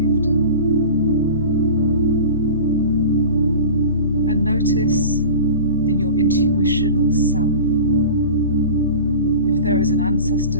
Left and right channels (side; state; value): both; inverted; correlation -0.35